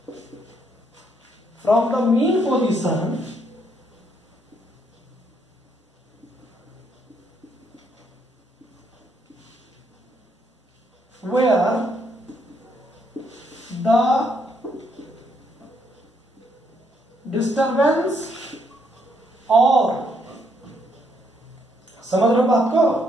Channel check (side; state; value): both; normal; correlation 0.73